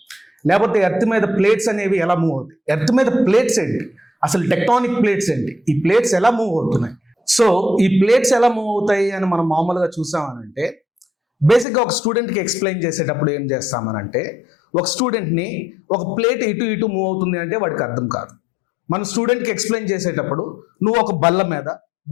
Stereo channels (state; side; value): drops out; right; at 11.7 s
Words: లేకపోతే ఎర్త్ మీద ప్లేట్స్ అనేవి ఎలా మూవ్ అవుతాయి, ఎర్త్ మీద ప్లేట్స్ ఏంటి, అసలు టెక్టానిక్ ప్లేట్స్ ఏంటి, ఈ ప్లేట్స్ ఎలా మూవ్ అవుతున్నాయి. సో ఈ ప్లేట్స్ ఎలా మూవ్ అవుతాయి అని మనం మామూలుగా చూసామనంటే బేసిక్గా ఒక స్టూడెంట్కి ఎక్స్ప్లెయిన్ చేసేటప్పుడు ఏం చేస్తామనంటే ఒక స్టూడెంట్ని ఒక ప్లేట్ ఇటు ఇటు మూవ్ అవుతుంది అంటే వాడికి అర్థం కాదు. మన స్టూడెంట్కి ఎక్స్ప్లెయిన్ చేసేటప్పుడు నువ్వు ఒక బల్ల మీద